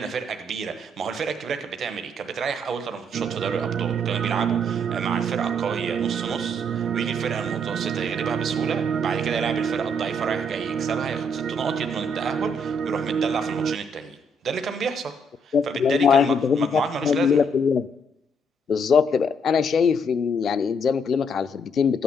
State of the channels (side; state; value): both; normal; correlation 0.70